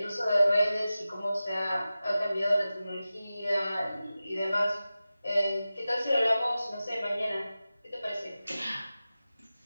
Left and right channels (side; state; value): both; inverted; correlation -0.95